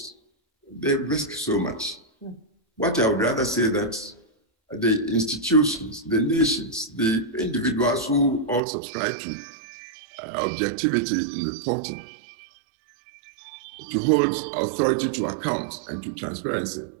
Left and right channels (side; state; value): left; drops out; at 8.6 s